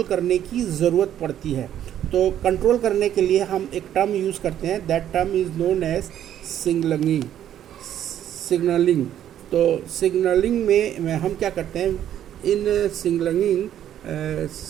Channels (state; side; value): quieter; left; 10.8 dB